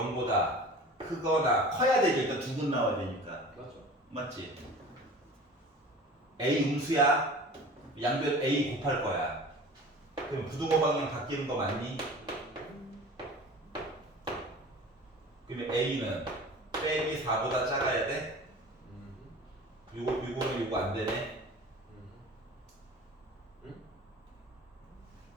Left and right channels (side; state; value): both; normal; correlation 0.40